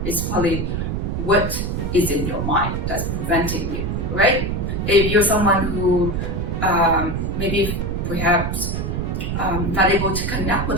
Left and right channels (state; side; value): noise; right; rumble, 1 dB below the sound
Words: It's probably what is in your mind that's preventing you, right? If you're someone who maybe perhaps not able to connect